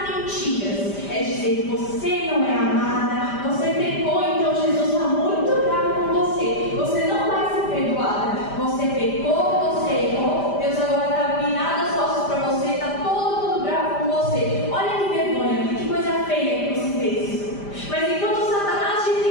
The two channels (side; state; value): right; late; 5.0 ms